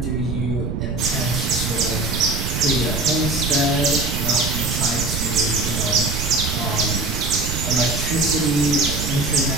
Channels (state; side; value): noise; right; rumble, 3 dB below the sound